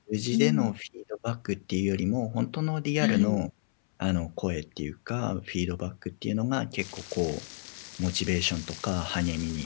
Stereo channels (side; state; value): right; silent; 58 dB below the other